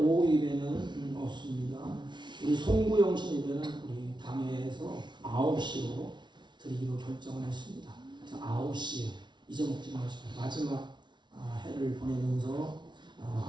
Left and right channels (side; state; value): left; late; 0.22 ms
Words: 예배는 없습니다. 우리 송구영신 예배는 우리 당회에서 9시로 드리기로 결정을 했습니다. 그래서 9시에 잊어먹지 마시고 마지막 해를 보내면서